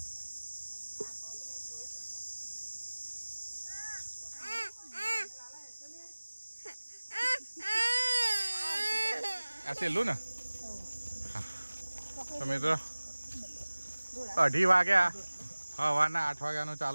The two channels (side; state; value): both; inverted; correlation -1.00